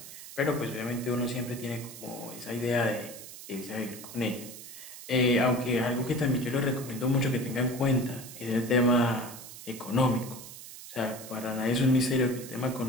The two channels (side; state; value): right; noise; hiss, 14 dB below the sound